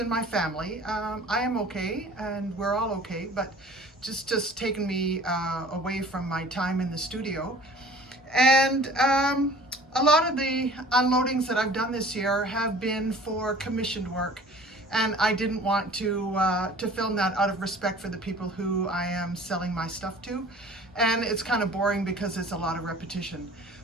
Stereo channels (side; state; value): both; normal; correlation 0.47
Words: my family. I am okay and we're all okay, but just taken me away from my time in the studio. And a lot of the unloadings that I've done this year have been for commissioned work. And I didn't want to film that out of respect for the people who I am selling my stuff to. And it's kind of boring because it's a lot of repetition.